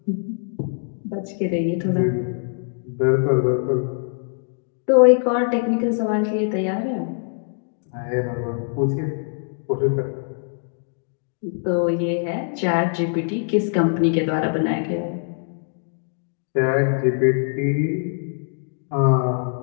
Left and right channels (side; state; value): right; silent; digital silence